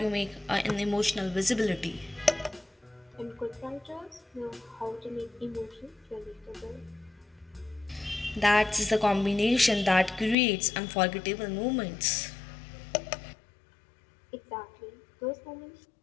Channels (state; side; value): drops out; right; at 10.4 s